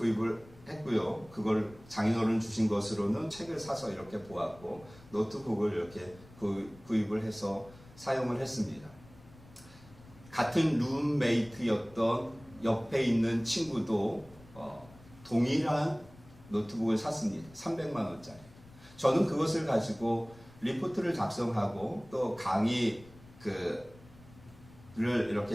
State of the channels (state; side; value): noise; left; rumble, 22 dB below the sound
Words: 했고요. 그걸 장인어른 주신 것으로는 책을 사서 이렇게 보았고, 노트북을 이렇게 구입을 해서 사용을 했습니다. 같은 룸메이트였던 옆에 있는 친구도 동일한 노트북을 샀습니다. 300만 원짜리. 저는 그것을 가지고 리포트를 작성하고 또 강의를